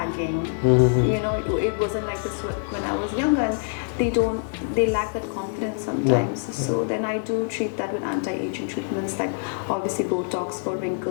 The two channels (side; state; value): right; silent; digital silence